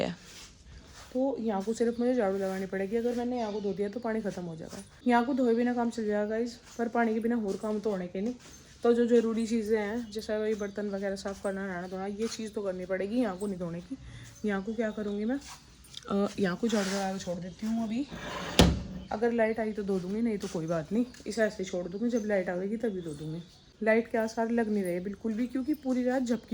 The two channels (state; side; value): identical; both; correlation 1.00